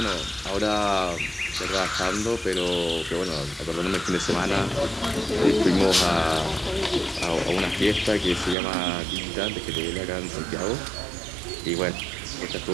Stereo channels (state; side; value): drops out; left; at 8.6 s